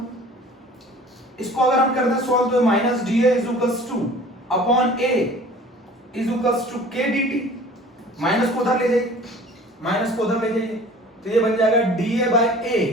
इसको अगर हम करते हैं सॉल्व, तो minus D a is equals to upon a is equals to k d T, minus को उधर ले जाइए, माइनस को उधर ले जाइए, तो ये बन जाएगा d A by a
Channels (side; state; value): both; normal; correlation 0.46